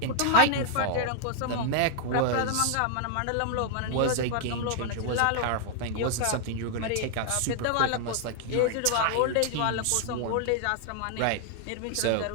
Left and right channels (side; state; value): both; different; correlation 0.00